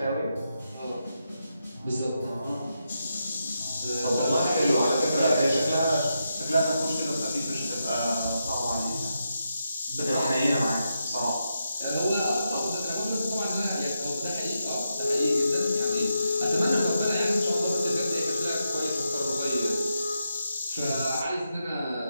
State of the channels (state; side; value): inverted; both; correlation -0.85